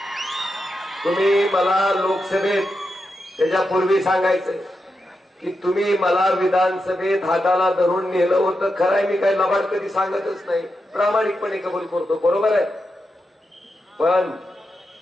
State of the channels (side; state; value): both; normal; correlation 0.87